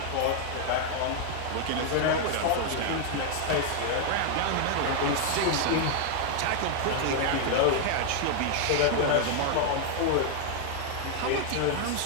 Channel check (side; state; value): both; different; correlation 0.00